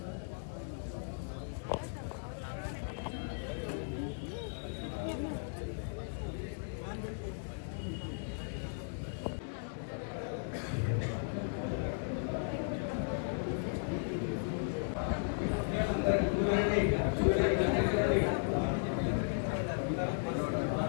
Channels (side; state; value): right; silent; digital silence